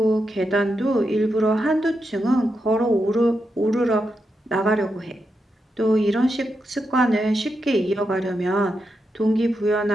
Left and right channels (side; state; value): both; normal; correlation 0.85